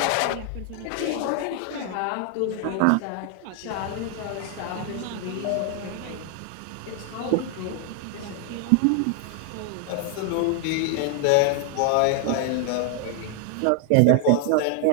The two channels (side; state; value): both; different; correlation 0.00